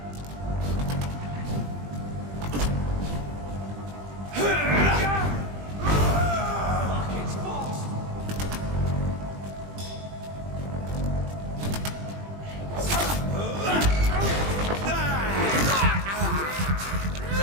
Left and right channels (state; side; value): late; left; 20 ms